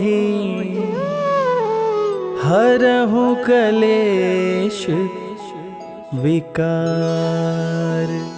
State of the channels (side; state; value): both; identical; correlation 1.00